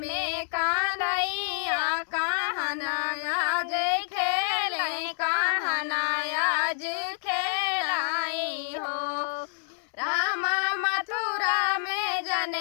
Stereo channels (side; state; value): right; silent; digital silence